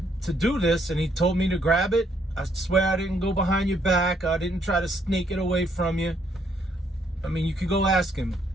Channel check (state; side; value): normal; both; correlation 0.70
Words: do this, and he told me to grab it. I swear I didn't go behind your back. I didn't try to sneak it away from you. I mean, you could go ask him.